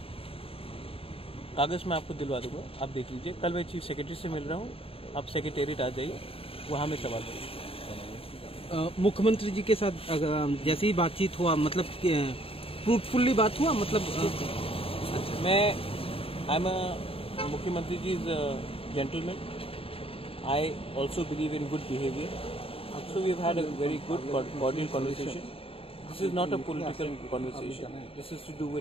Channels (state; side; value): late; right; 0.27 ms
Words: कागज़ मैं आपको दिलवा दूंगा, आप देख लीजिए। कल मैं चीफ सेक्रेटरी से मिल रहा हूँ, आप सेक्रेटेरिएट आ जाइए, वहाँ में सवाल करिए। मुख्यमंत्री जी के साथ जैसे ही बातचीत हुआ, मतलब फ्रूटफुल्ली बात हुआ, मतलब मैं आई एम अ मुख्यमंत्री ji is gentleman, I also believe in good behaviour, so we have had a very good cordial conversation. This is not a political conversation, this is to do